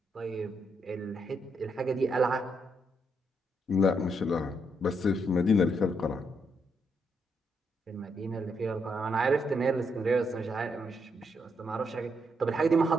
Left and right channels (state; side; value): normal; both; correlation 0.77